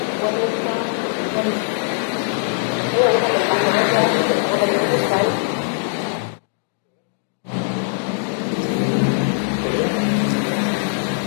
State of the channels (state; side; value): silent; right; digital silence